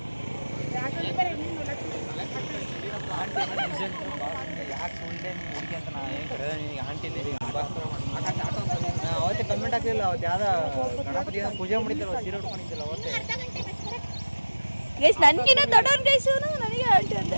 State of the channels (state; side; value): inverted; both; correlation -1.00